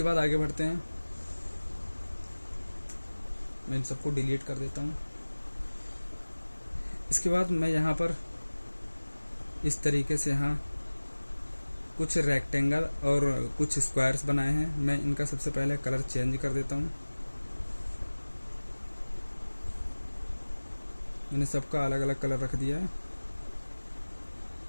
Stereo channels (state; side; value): inverted; both; correlation -1.00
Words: बाद आगे बढ़ते हैं। मैं इन सबको डिलीट कर देता हूँ। इसके बाद मैं यहाँ पर इस तरीके से यहाँ कुछ रेक्टेंगल और कुछ स्क्वायर्स बनाए हैं। मैं इनका सबसे पहले कलर चेंज कर देता हूँ। मैंने सबका अलग अलग कलर रख दिया है।